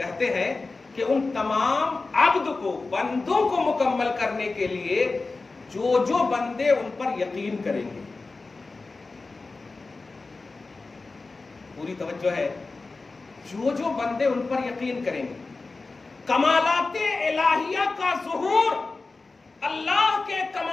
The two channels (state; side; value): quieter; right; 3.7 dB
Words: ہیں کہ ان تمام عبد کو، بندوں کو مکمل کرنے کے لیے جو بندے ان پر یقین کریں گے، پوری توجہ ہے، جو بندے ان پر یقین کریں گے، کمالات الہیہ کا ظہور، اللہ کے